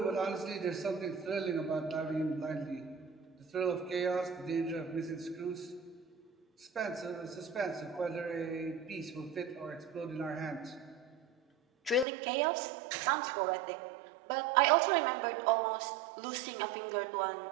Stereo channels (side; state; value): left; drops out; at 12.1 s